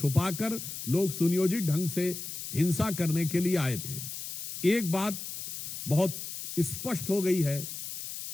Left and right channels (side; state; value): left; noise; hiss, 8 dB below the sound